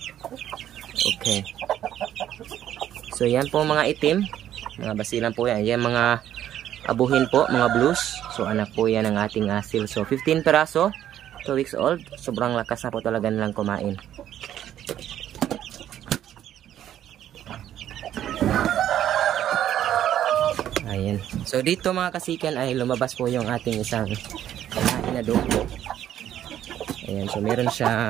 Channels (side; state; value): left; quieter; 11.2 dB